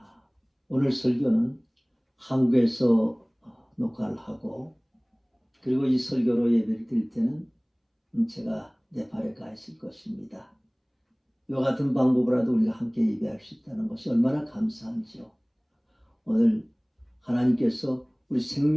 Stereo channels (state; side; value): identical; both; correlation 1.00